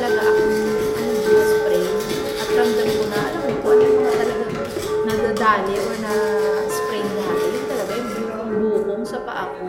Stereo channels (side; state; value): both; identical; correlation 1.00